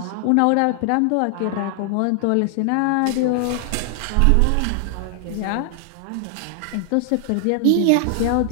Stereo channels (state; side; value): different; both; correlation 0.00